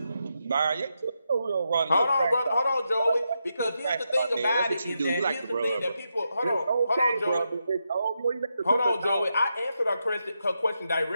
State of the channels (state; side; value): inverted; both; correlation -0.85